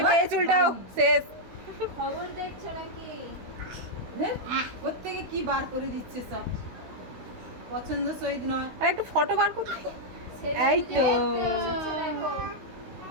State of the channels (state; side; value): late; left; 16 ms